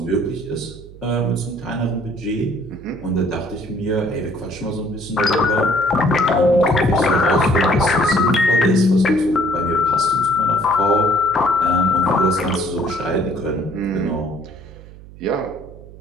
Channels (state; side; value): noise; right; hum, 18 dB below the sound